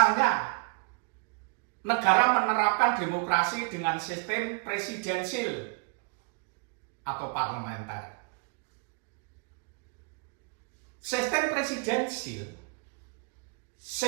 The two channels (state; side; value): quieter; left; 37.0 dB